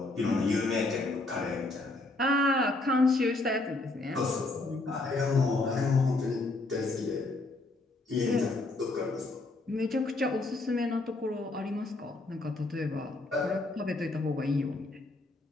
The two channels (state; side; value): quieter; right; 3.0 dB